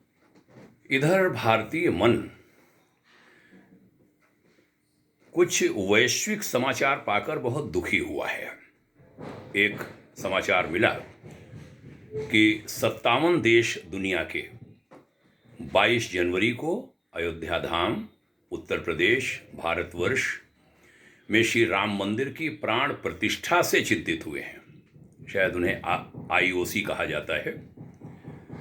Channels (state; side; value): identical; both; correlation 1.00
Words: इधर भारतीय मन कुछ वैश्विक समाचार पाकर बहुत दुखी हुआ है। एक समाचार मिला कि 57 देश दुनिया के 22 जनवरी को अयोध्या धाम उत्तर प्रदेश भारतवर्ष में श्री राम मंदिर की प्राण प्रतिष्ठा से चिंतित हुए हैं। शायद उन्हें आईओसी कहा जाता है